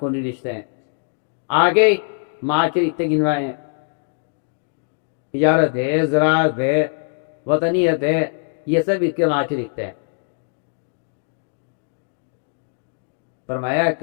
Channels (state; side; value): silent; right; digital silence